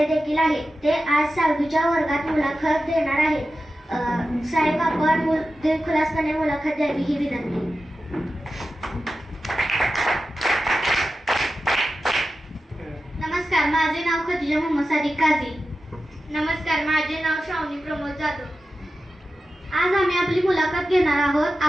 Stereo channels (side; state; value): both; normal; correlation 0.93